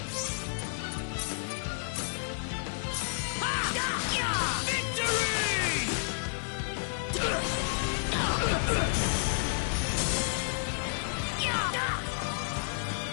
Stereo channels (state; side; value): silent; right; digital silence